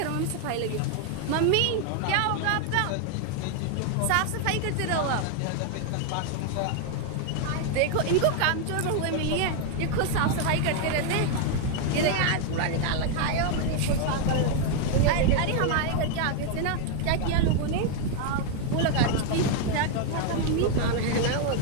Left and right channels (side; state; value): both; different; correlation 0.00